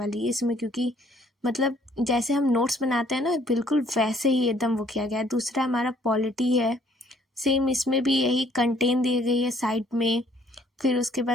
है इसमें, क्योंकि मतलब जैसे हम नोट्स बनाते हैं ना, बिल्कुल वैसे ही एकदम वो किया गया है। दूसरा हमारा पॉलिटी है, सेम इसमें भी यही कंटेंट दी गई है साइड में। फिर उसके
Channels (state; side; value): normal; both; correlation 0.62